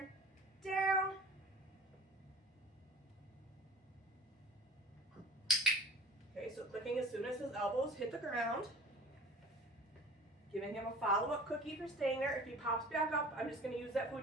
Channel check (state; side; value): normal; both; correlation 0.42